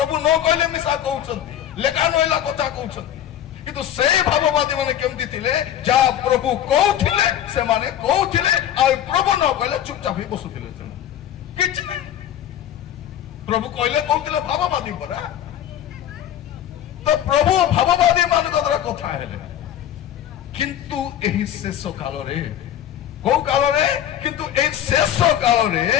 न कहले मिसा कहउछंती लेखा नइला कथा कहउछंती किंतु से भाववादी माने केमती थिले जा प्रभु कहउथिले से माने कहउथिले आ प्रभु न कहले चुपचाप ही बसुथिले किछि नै प्रभु कहले कहउथिले भाववादी परा तो प्रभु भाववादी मान द्वारा कथा हेले किंतु एही शेष काल रे को काल रे किंतु ए शेष काल रे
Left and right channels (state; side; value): quieter; right; 10.9 dB